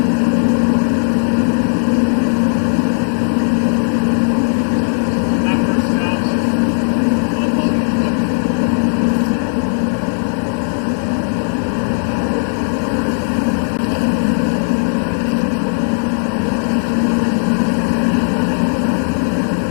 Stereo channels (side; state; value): right; silent; digital silence